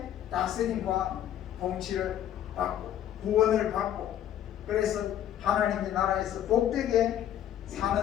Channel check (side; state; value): right; quieter; 11.1 dB